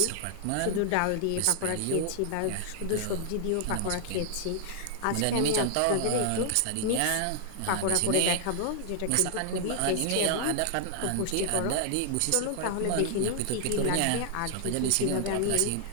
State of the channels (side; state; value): both; different; correlation 0.00